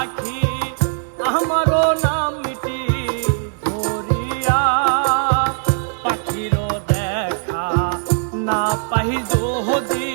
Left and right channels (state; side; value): silent; left; 66 dB below the other